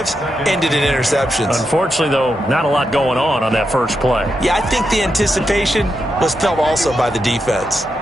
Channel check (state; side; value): normal; both; correlation 0.85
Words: ended in interceptions. Unfortunately, though, not a lot going on that first play. Yeah, I think the anticipation was felt also by the defense.